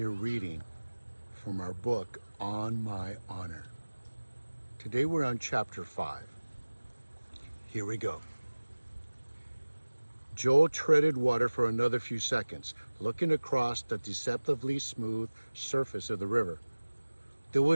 reading from our book, On My Honor. Today we're on chapter 5. Here we go. Joel treaded water for another few seconds, looking across the deceptively smooth surface of the river. There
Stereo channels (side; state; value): both; inverted; correlation -1.00